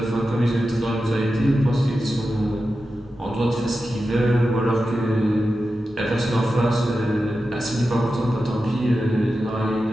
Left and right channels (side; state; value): both; normal; correlation 0.91